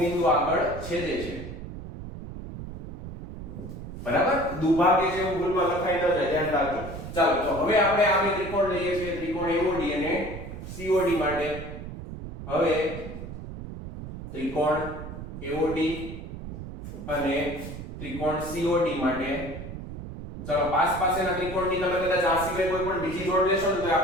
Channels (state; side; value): noise; right; rumble, 10 dB below the sound